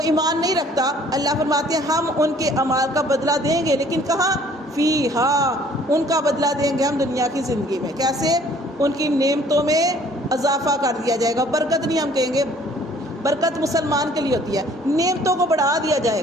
ایمان نہیں رکھتا، اللہ فرماتے ہیں ہم ان کے اعمال کا بدلہ دیں گے، لیکن کہاں؟ فیہا، ان کا بدلہ دیں گے ہم دنیا کی زندگی میں۔ کیسے؟ ان کی نعمتوں میں اضافہ کر دیا جائے گا۔ برکت نہیں ہم کہیں گے، برکت مسلمان کے لیے ہوتی ہے، نعمتوں کو بڑھا دیا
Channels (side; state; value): both; normal; correlation 0.57